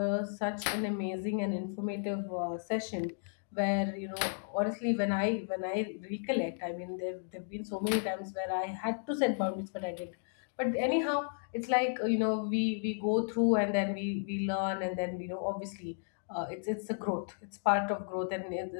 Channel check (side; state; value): right; silent; digital silence